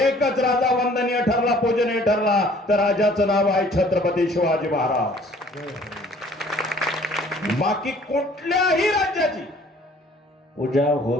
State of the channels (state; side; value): normal; both; correlation 0.55